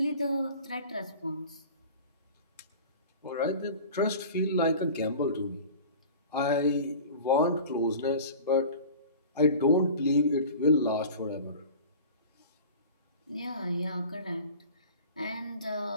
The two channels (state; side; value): inverted; both; correlation -0.39